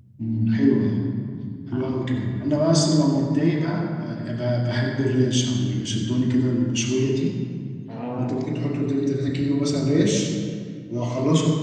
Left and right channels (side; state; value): both; identical; correlation 1.00